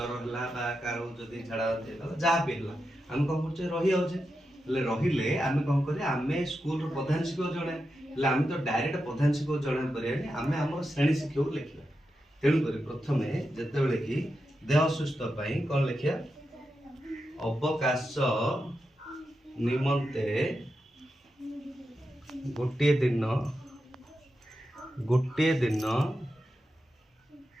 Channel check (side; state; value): both; normal; correlation 0.88